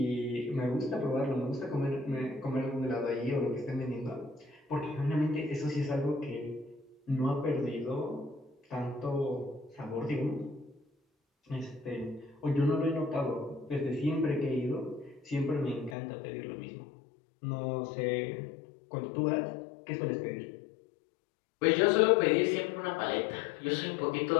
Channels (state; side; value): drops out; right; at 16.0 s